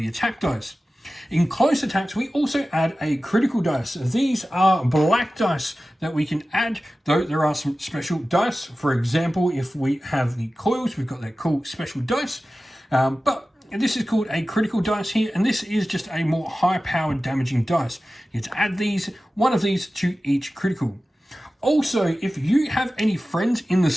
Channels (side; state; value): both; normal; correlation 0.95